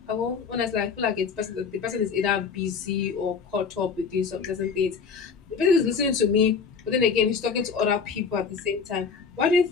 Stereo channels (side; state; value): right; quieter; 5.6 dB